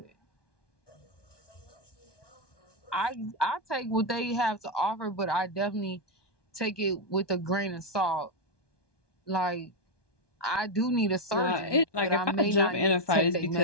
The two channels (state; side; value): late; right; 1.2 ms